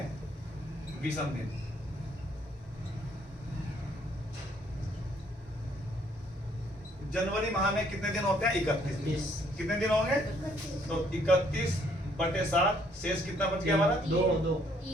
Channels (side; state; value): both; normal; correlation 0.66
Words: विषम दिन। जनवरी माह में कितने दिन होते हैं? 31। कितने दिन होंगे? तो 31/7, शेष कितना बच गया हमारा? 2।